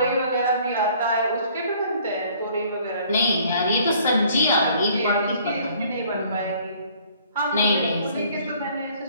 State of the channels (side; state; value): both; inverted; correlation -0.57